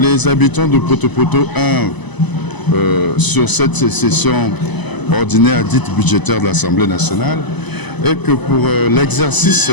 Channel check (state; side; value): late; right; 1.0 ms